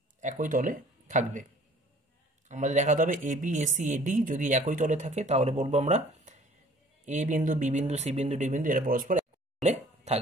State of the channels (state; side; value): normal; both; correlation 0.53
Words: একই তলে থাকবে। আমাদের দেখাতে হবে এ বি এসি এডি যদি একই তলে থাকে তাহলে বলবো আমরা এ বিন্দু বি বিন্দু সি বিন্দু ডি বিন্দু এরা পরস্পর একই তলে